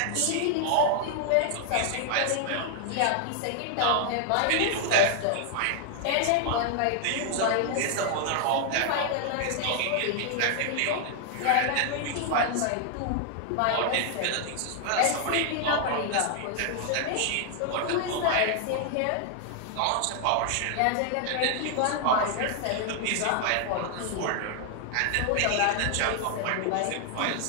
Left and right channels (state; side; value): different; both; correlation 0.00